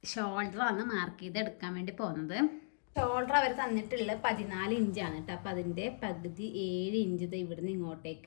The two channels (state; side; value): silent; right; digital silence